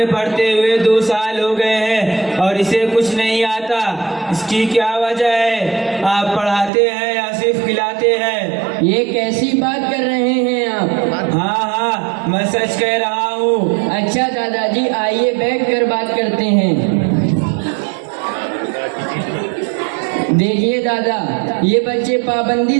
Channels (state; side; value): drops out; left; at 6.7 s